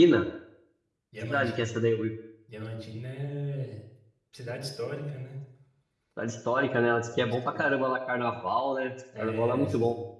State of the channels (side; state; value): both; identical; correlation 1.00